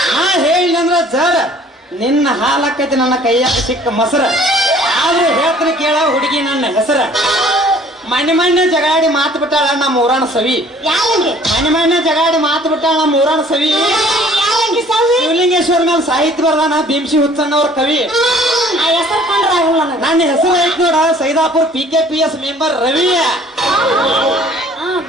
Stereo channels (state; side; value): normal; both; correlation 0.54